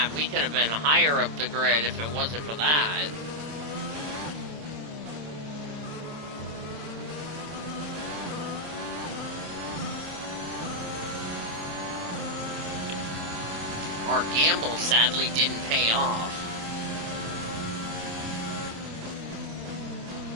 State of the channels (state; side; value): late; left; 27 ms